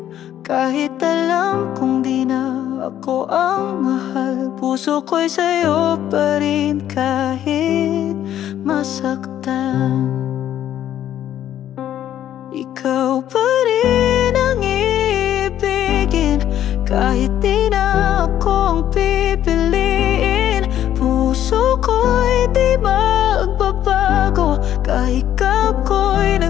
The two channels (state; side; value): quieter; right; 11.3 dB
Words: Kahit alam kong di na ako ang mahal, puso ko'y sa'yo pa rin kahit masaktan. Ikaw pa rin ang iibigin, kahit di na ako ang pipiliin. Puso ko'y di magbabago, kahit ako'y